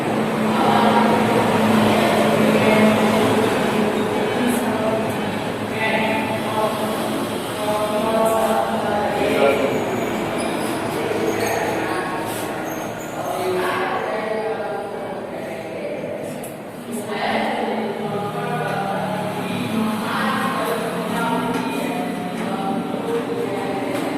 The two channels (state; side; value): identical; both; correlation 1.00